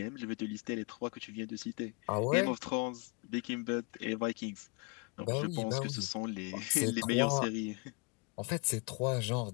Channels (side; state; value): right; quieter; 31.1 dB